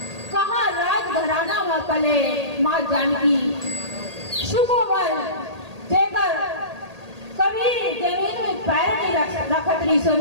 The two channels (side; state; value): left; late; 1.8 ms